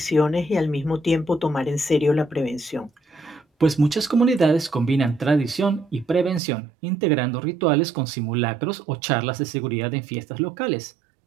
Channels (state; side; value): drops out; left; at 6.4 s